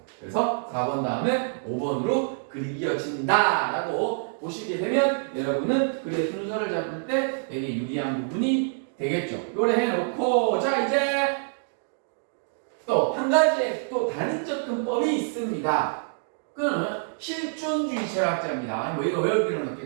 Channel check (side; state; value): left; silent; digital silence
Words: 그래서 4번 다음에 5번으로 글이 이어진다라고 보시게 되면 여러분은 글의 순서를 잡을 때 되게 유리한 부분이 되겠죠. 요래 해놓고 자 이제 또 한 가지 또 다른 접근법이 있습니다. 그는 실존주의 철학자입니다. 뭐 이거 외울 필요는